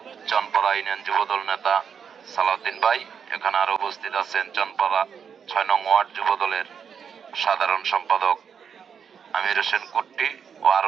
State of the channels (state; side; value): quieter; left; 7.1 dB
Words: চনপাড়া ইউনিয়ন যুব দল নেতা সালাউদ্দিন ভাই। এখানে আরো উপস্থিত আছেন চনপাড়া ৬ নং ওয়ার্ড যুব দলের সাধারণ সম্পাদক আমির হোসেন কুট্টি ও